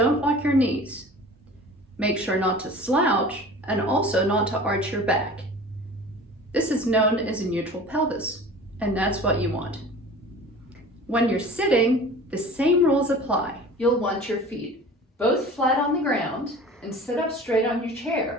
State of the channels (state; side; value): normal; both; correlation 0.41